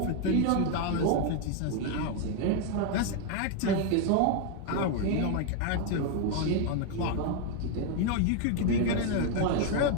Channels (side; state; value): both; different; correlation 0.00